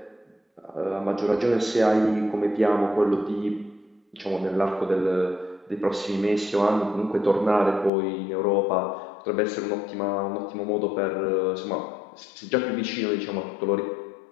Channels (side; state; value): right; drops out; at 7.9 s